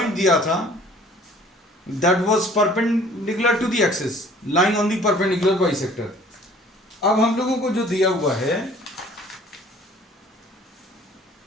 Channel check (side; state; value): both; normal; correlation 0.53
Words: दिया था that was perpendicular to the axis lying on the perpendicular bisector. अब हम लोगों को जो दिया हुआ है